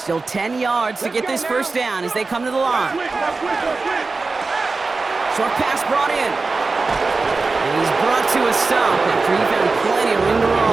Still 10 yards to get this first down as they come to the line. Short pass brought in. And he's brought to a stop after he found plenty of room to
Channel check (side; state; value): left; quieter; 3.9 dB